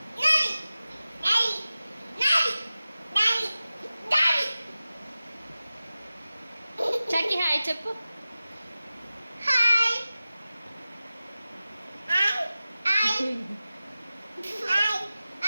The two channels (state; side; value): inverted; both; correlation -0.95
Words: చక్కి హాయ్ చెప్పు.